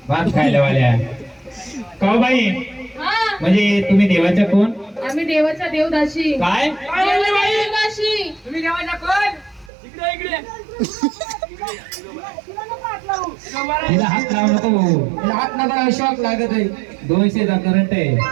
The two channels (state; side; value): drops out; left; at 9.7 s